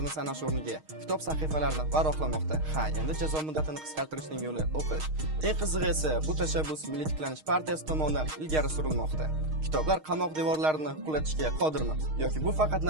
sanash o'rniga kitob sahifalarini varaqlamoqda. Ha, endi jazo muddatini qisqartirishning yo'li o'qish. Eng qizig'i esa bu tashabbus Milliy tiklanish partiyasi tomonidan ilgari surilmoqda. Kitoblar qamoq devorlarini qulatishga qodirmi yoki bu faqat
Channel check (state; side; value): late; left; 6.4 ms